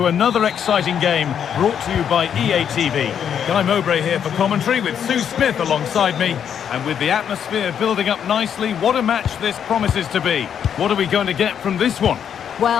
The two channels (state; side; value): quieter; right; 8.4 dB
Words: another exciting game brought to you by EA TV. Guy Mowbray here for commentary with Sue Smith alongside me. And with the atmosphere building up nicely, what a match this promises to be. What are we going to get from this one?